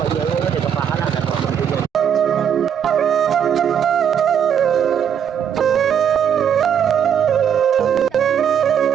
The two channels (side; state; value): left; quieter; 8.5 dB